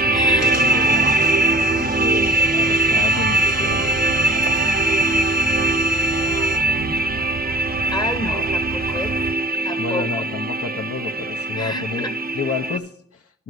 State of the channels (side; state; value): both; normal; correlation 0.43